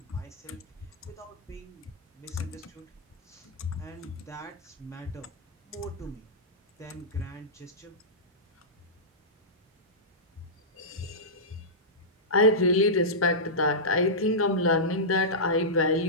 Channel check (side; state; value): both; normal; correlation -0.15